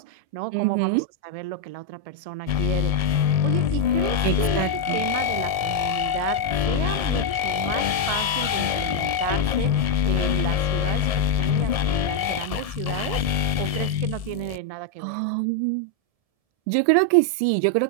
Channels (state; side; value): late; left; 1.7 ms